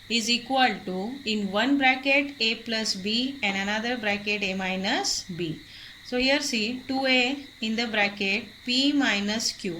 is equal to, in one bracket A plus B and another bracket A minus B. So here see 2A in the bracket P minus Q.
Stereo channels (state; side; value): identical; both; correlation 1.00